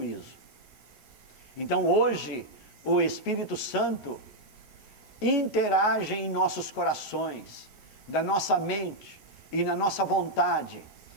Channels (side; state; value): right; late; 7.6 ms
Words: Então hoje, o Espírito Santo interage em nossos corações, da nossa mente e na nossa vontade,